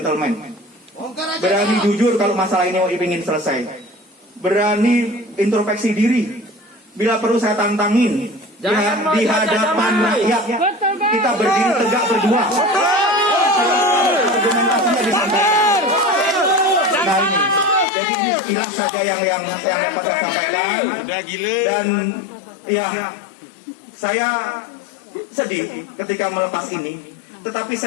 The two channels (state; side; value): drops out; right; at 17.9 s